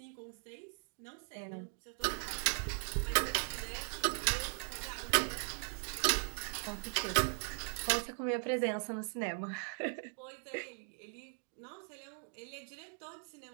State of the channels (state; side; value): silent; left; 52 dB below the other